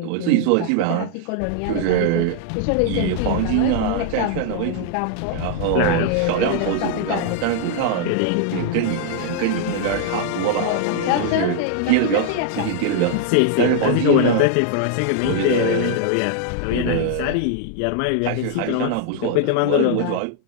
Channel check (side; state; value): both; different; correlation -0.01